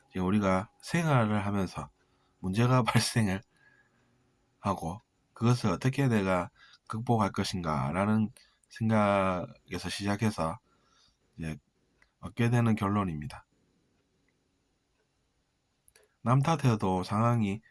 이제 우리가 생활을 하면서 문제가 발생을 하고 그것을 어떻게 내가 극복할 것인가 라는 생각에서 시작해서 이제 얻게 되는 결론입니다. 남 탓해도 상황이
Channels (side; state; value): both; identical; correlation 1.00